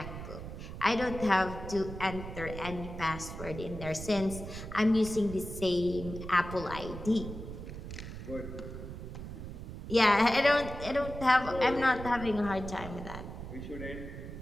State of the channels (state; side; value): noise; right; rumble, 9 dB below the sound